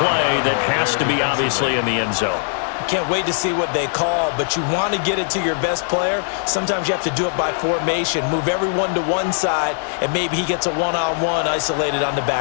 that has to be obviously in the end zone. Can't wait to see what they call, but you want to get it to your best player. Sometimes you have to do it by formation. Move everyone to one side, and maybe he gets a one-on-one isolated on the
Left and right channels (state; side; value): silent; right; digital silence